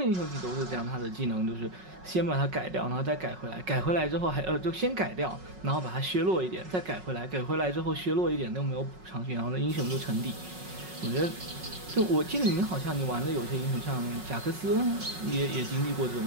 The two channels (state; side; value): late; left; 5.4 ms